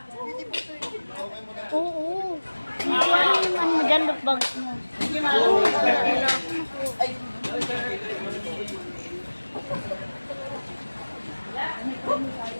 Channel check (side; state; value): both; inverted; correlation -1.00